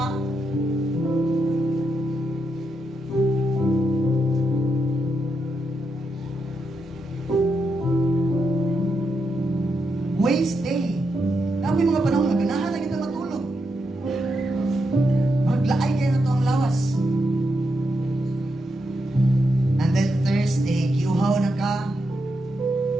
Waste Day. Na mga panahon nga ganahan lang kita matulog. Maglaay kayo na to ang lawas. And then Thursday, kiuhaw na ka.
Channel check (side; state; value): both; normal; correlation 0.83